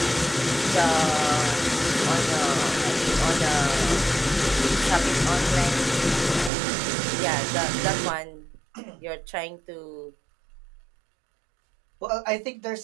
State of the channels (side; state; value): left; drops out; at 6.5 s